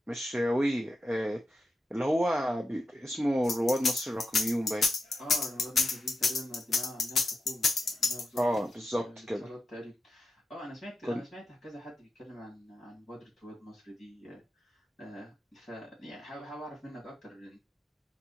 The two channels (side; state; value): both; normal; correlation 0.89